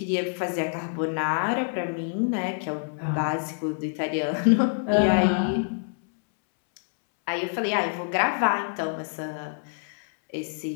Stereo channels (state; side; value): silent; right; 61 dB below the other